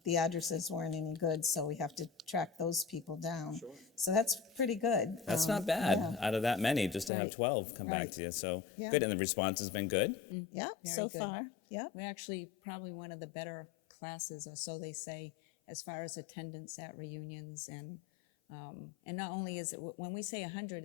the addresses weren't any good, so we have to track those people down. Sure. So that's pretty good. That's not bad out of that many, just to have 12 come back to you. So good, and the response has been good? Yeah, Very so good. far. Yeah. We're actually probably one of the better classes, or so they say, as far as attendance at reunions. And not only is it, when we say 100,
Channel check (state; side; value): drops out; right; at 7.1 s